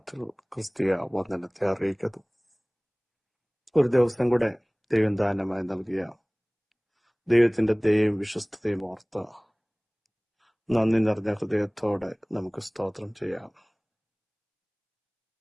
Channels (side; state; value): both; identical; correlation 1.00